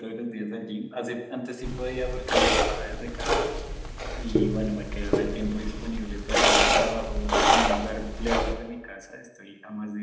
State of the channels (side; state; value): both; identical; correlation 1.00